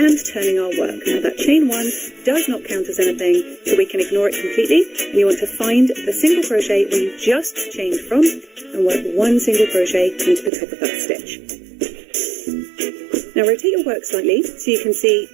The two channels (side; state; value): left; drops out; at 10.5 s